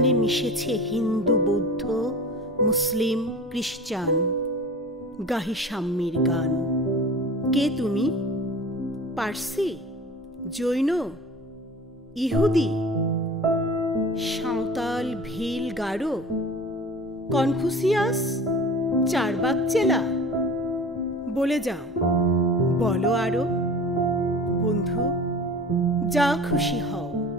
মিশেছে হিন্দু, বৌদ্ধ, মুসলিম, খ্রিস্টান। গাহি সাম্যের গান। কে তুমি? পার্সি, জৈন, ইহুদি, সাঁওতাল, ভিল, গারো, কনফুসিয়াস, চারবাক চেলা? বলে যাও, বলো আরো। বন্ধু, যা খুশি হও,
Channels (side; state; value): both; normal; correlation 0.38